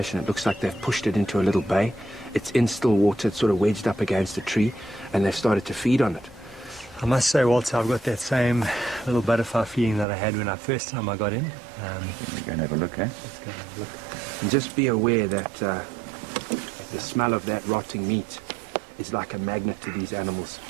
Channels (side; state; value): left; drops out; at 10.1 s